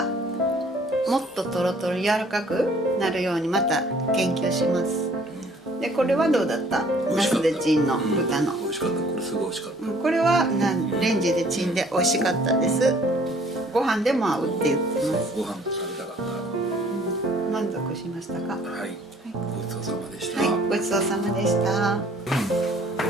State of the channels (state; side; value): normal; both; correlation 0.57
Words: もっとトロトロ柔らかくなるようにまた研究します。でこれはどうだった？ナスでチンの豚の。美味しかった。これすごい美味しかった。これはレンジでチンで美味しかったです。ご飯でも合うって言ってます。ご飯と食べたかった。満足しましたか？はい。ごちそうさまでした。はい、ごちそうさまでした。ご